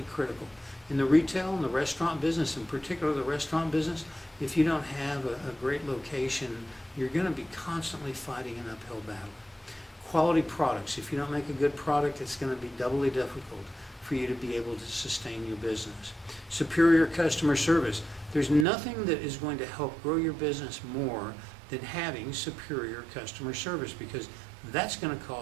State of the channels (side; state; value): left; drops out; at 18.7 s